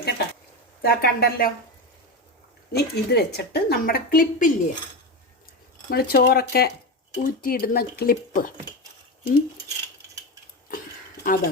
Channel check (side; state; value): both; normal; correlation 0.18